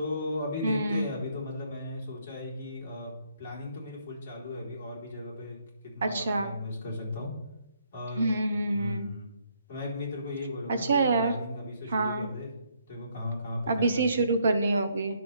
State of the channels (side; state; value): both; inverted; correlation -0.71